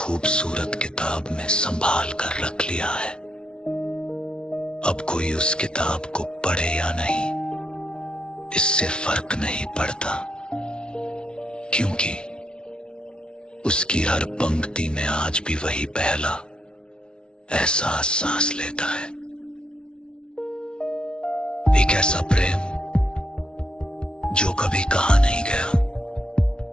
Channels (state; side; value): late; right; 0.055 ms